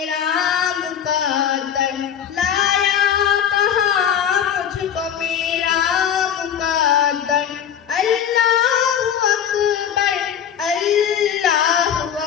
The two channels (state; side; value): quieter; right; 8.7 dB